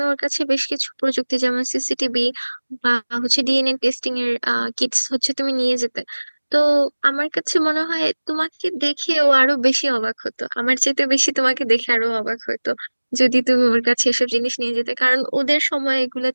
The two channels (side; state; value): both; inverted; correlation -1.00